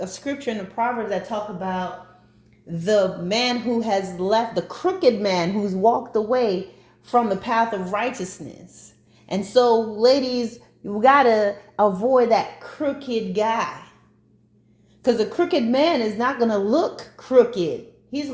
scripture in the Proverbs that talk about the man who has left, the crooked man who's walked away from the path of righteousness. And so, ladies, you gotta avoid that crooked guy. Because a crooked man is not gonna look crooked. He's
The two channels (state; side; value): identical; both; correlation 1.00